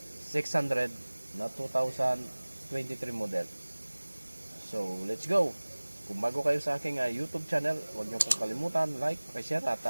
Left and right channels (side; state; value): both; inverted; correlation -1.00